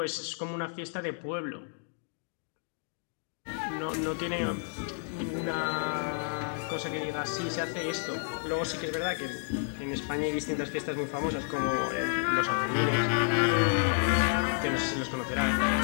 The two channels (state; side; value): silent; right; 57 dB below the other